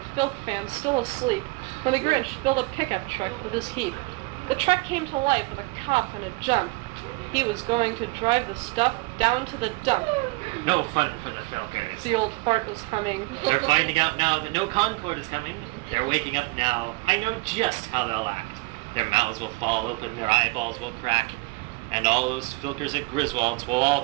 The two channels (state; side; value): quieter; left; 25.7 dB